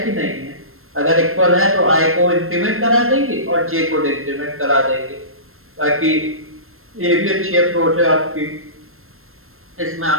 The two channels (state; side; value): late; left; 0.62 ms